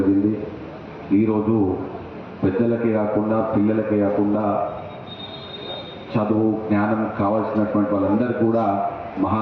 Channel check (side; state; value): both; identical; correlation 1.00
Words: ఈరోజు పెద్దలకే కాకుండా పిల్లలకే కాకుండా చదువు జ్ఞానం కావాల్సినటువంటి వాళ్ళందరూ కూడా మహా